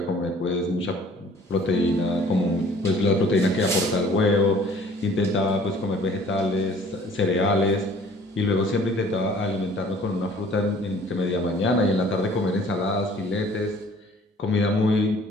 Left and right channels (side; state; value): both; normal; correlation 0.53